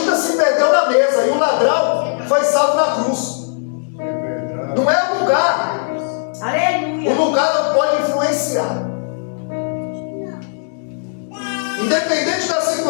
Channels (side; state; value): right; silent; digital silence